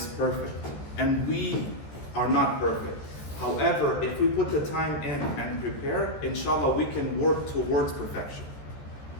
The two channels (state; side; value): late; right; 14 ms